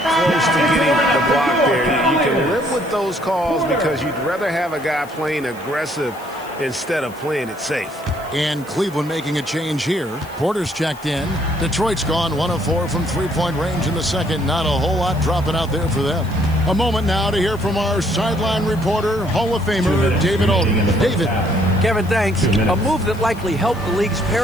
to getting the block there. You can live with those calls because you'd rather have a guy playing aggressive instead of playing it safe. And Cleveland making a change here. Porter's checked in. Detroit's gone 1 of 4 from three-point range in the second. Not a whole lot dropping out there for them. A moment now to hear from our sideline reporter, Hall of Famer David Aldridge. David. Kevin, thanks. A move that likely helped the league's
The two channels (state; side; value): noise; left; hiss, 22 dB below the sound